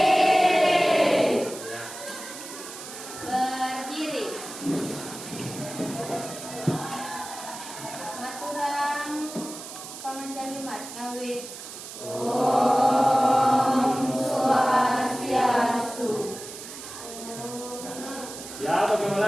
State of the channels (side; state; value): right; noise; hiss, 12 dB below the sound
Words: Berdiri. Maturang pamanjalimat ngawit. Om Swastiastu. Ya,